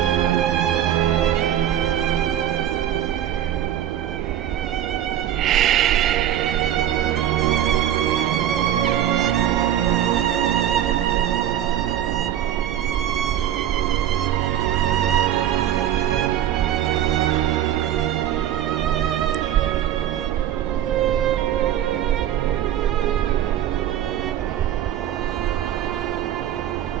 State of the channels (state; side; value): quieter; left; 11.1 dB